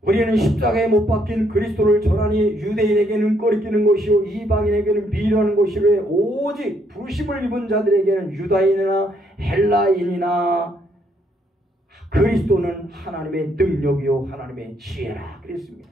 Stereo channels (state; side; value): normal; both; correlation 0.71